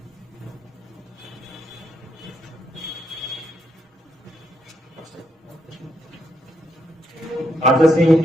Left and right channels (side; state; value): both; normal; correlation 0.78